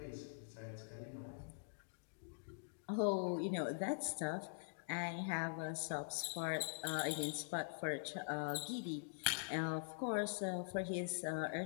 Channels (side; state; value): right; silent; digital silence